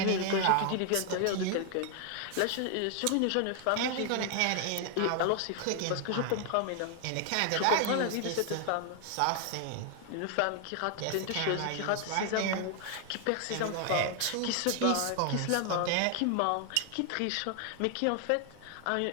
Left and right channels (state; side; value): different; both; correlation 0.00